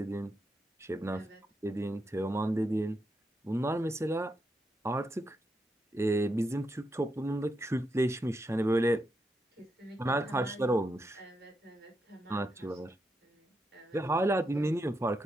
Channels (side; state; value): both; normal; correlation 0.83